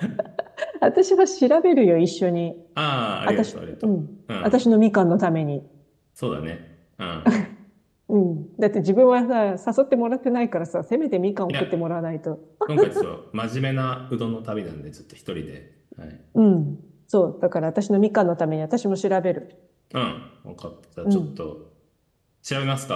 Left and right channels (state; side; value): identical; both; correlation 1.00